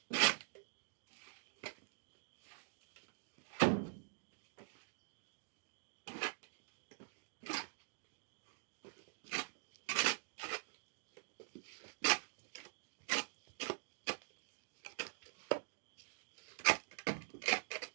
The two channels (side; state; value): left; silent; digital silence